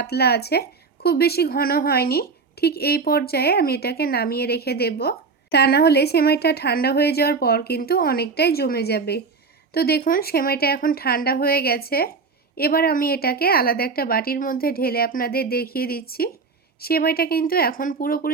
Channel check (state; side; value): quieter; left; 4.7 dB